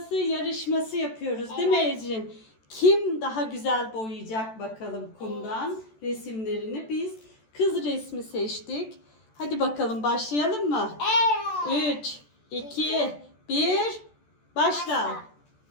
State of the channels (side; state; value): right; late; 14 ms